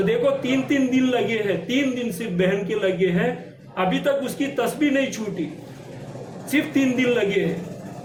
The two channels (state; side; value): identical; both; correlation 1.00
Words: دیکھو 3 دن لگے ہیں، 3 دن صرف بہن کے لگے ہیں، ابھی تک اس کی تسبیح نہیں چھوٹی، صرف 3 دن لگے ہیں،